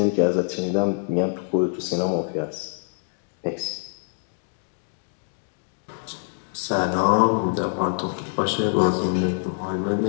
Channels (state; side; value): silent; right; digital silence